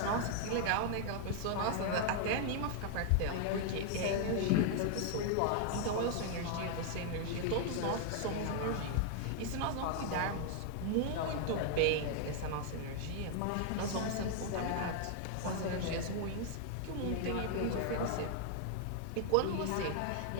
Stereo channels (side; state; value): both; different; correlation 0.00